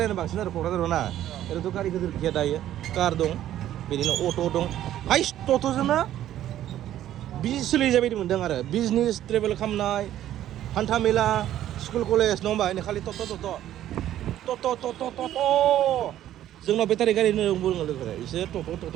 बांसिन आरो क'क्राझाराव ना। ओरैनोथ' गारि गिदिर गैया दायो, कार दं, बिदिनो अट' दं। हाइस टट'जोंनो बिजनेस सोलिजाबाय बायदि मोनदों आरो बिजनेस ट्रेभेल खालामनाय, हान्था मेला, स्कुल कलेज नङा होमबा? खालि टट'। जोंनाव बेटारि गारि होनना बुङो लोगोफोरा, इसोर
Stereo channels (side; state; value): left; quieter; 12.3 dB